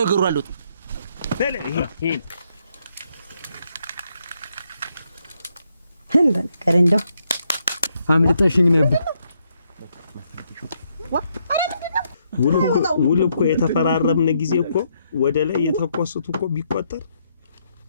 ነገሩ አሉት በለ ይሄ እንደ ነገር እንደው አምልጠሽኝ ነበር ውል እኮ የተፈራረምን ጊዜ እኮ ወደ ላይ የተቆስቱ እኮ ቢቆጠር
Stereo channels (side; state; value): both; inverted; correlation -0.76